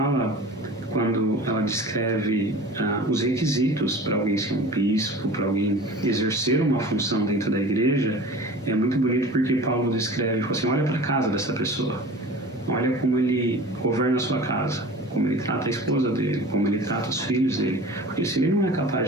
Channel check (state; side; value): normal; both; correlation 0.39